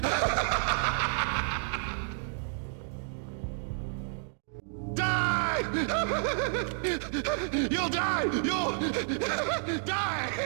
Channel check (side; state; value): left; silent; 57 dB below the other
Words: Die! You'll die! You'll